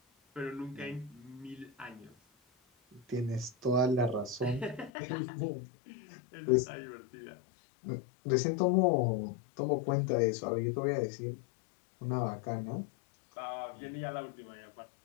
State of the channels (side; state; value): right; drops out; at 4.9 s